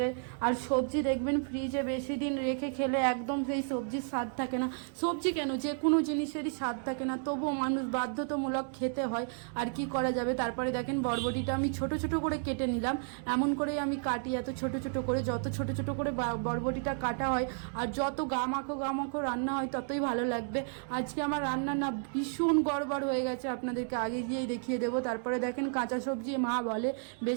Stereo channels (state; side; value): silent; left; 56 dB below the other